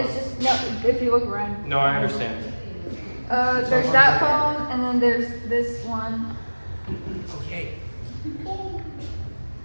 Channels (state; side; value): inverted; both; correlation -1.00